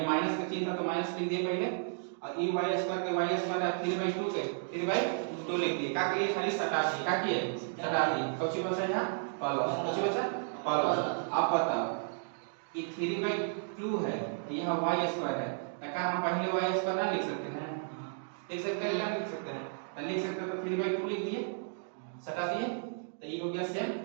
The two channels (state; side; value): silent; left; digital silence